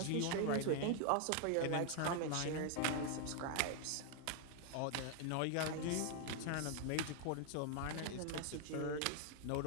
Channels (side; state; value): both; different; correlation 0.00